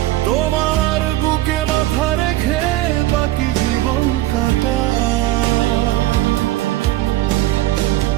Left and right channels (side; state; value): left; quieter; 16.1 dB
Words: তোমার বুকে মাথা রেখে বাকি জীবন কাটা।